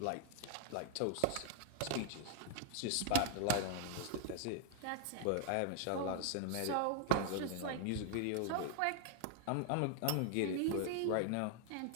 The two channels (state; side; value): different; both; correlation 0.00